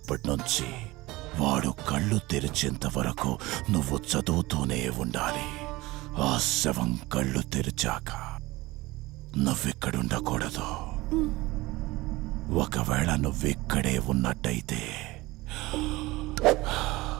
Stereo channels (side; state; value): left; quieter; 20.4 dB